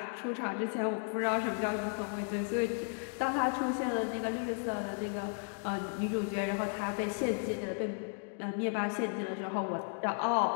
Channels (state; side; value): silent; right; 55 dB below the other